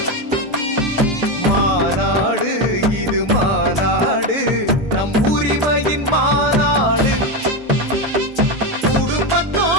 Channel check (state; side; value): normal; both; correlation 0.12